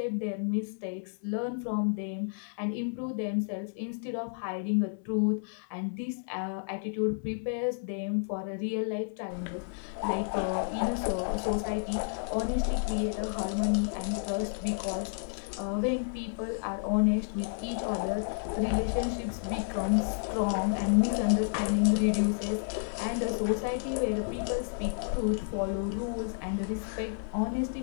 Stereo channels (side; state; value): right; silent; digital silence